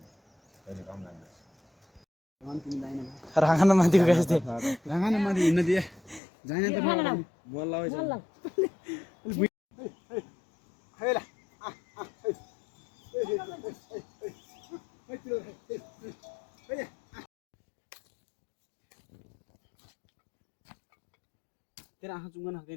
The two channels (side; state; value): right; drops out; at 6.2 s